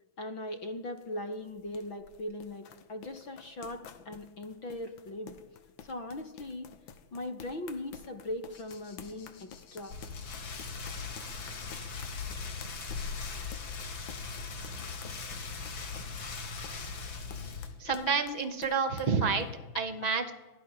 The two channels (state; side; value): late; right; 6.0 ms